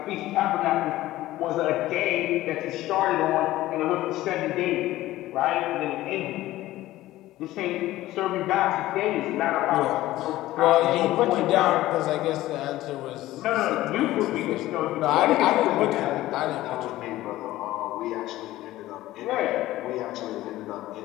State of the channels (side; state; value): right; quieter; 16.0 dB